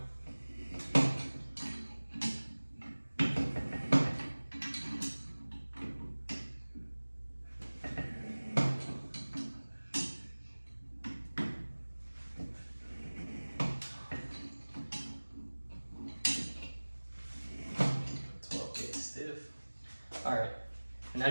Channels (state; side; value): inverted; both; correlation -1.00